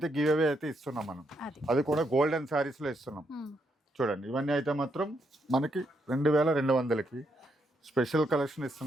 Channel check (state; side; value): normal; both; correlation 0.78